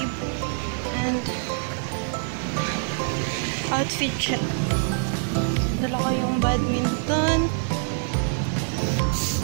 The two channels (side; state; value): left; silent; digital silence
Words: and outfit check. Dala ko yung badminton.